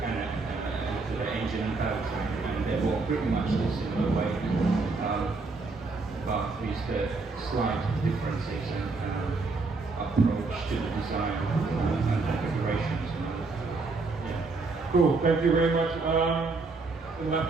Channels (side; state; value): left; quieter; 3.8 dB